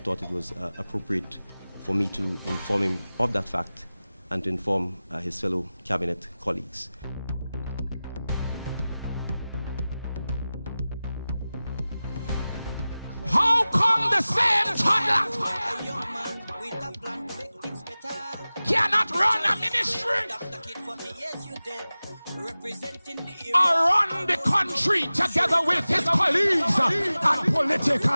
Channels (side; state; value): both; inverted; correlation -0.97